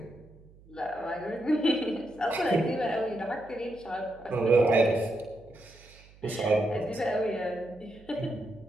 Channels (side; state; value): right; noise; hum, 24 dB below the sound